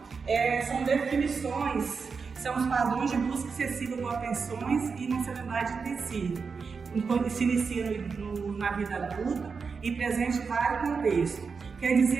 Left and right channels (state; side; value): quieter; left; 5.2 dB